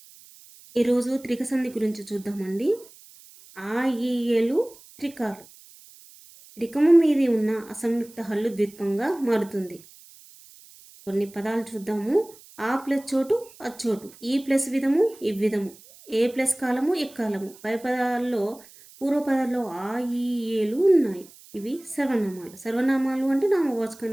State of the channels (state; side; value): noise; right; hiss, 23 dB below the sound